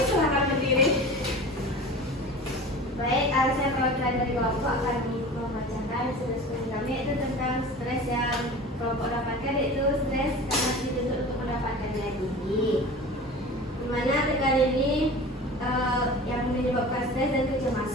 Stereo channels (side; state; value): both; normal; correlation 0.37